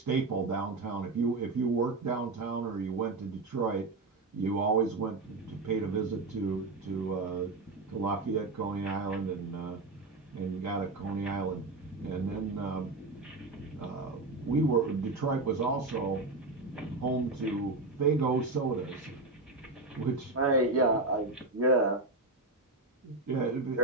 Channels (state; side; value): quieter; left; 3.3 dB